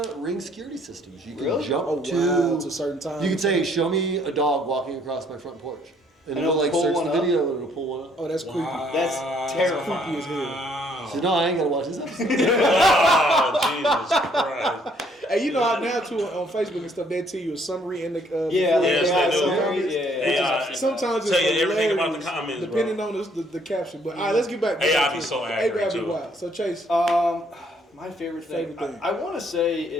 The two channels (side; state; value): both; normal; correlation 0.65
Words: Ring security systems. You can Really? jump Oh, to wow, to certain times. You could say, "Show me a dog walking across my front porch," and And it'll like it'll pull search one the up? video and it'll pull one up. Oh, that's creepy. That's terrifying. Creepy as hell. Wow. So no, I ain't gotta watch this episode. Oh, Jesus Christ. Hey, you know how now too on Facebook and stuff they tell you a summary in the Yeah, before Yes, the they do. comments. AI. Sometimes it's Tell you everything about the hilarious, comments, depending on the caption. But all right, let's get back. AI be so accurate, AI be too. wild. So Chase, My favorite thing. Favorite thing. I want to say